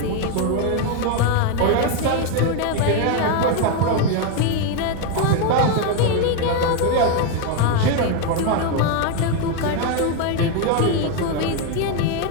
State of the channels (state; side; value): different; both; correlation 0.01